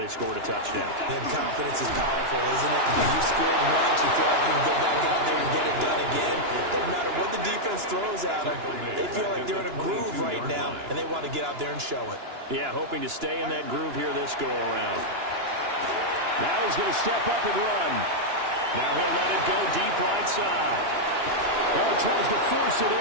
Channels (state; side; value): late; left; 2.9 ms